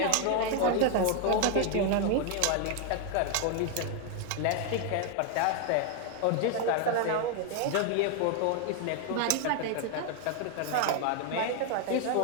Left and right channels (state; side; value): different; both; correlation 0.00